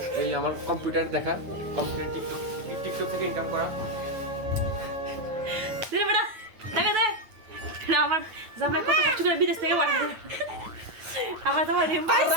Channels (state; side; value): late; left; 9.3 ms